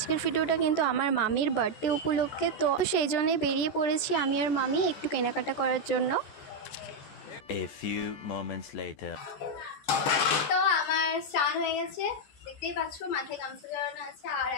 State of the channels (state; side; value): late; right; 14 ms